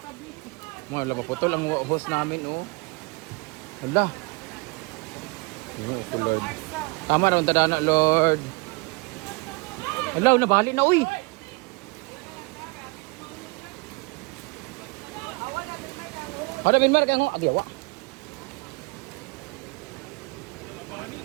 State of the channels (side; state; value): left; quieter; 28.9 dB